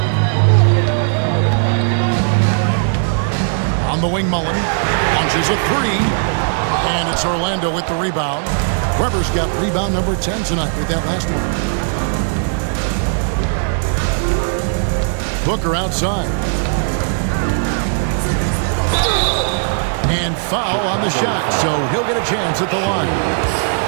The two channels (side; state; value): left; silent; 63 dB below the other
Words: On the wing, Mullen launches a 3. And it's Orlando with the rebound. Weber's got rebound number 10 tonight with that last one. Booker outside. And foul on the shot, so he'll get a chance at the line.